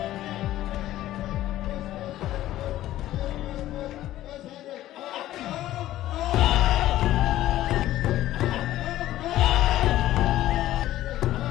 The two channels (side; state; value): right; quieter; 14.2 dB